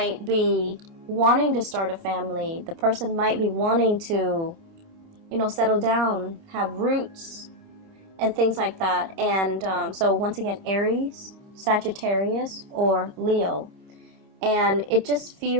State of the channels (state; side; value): late; left; 29 ms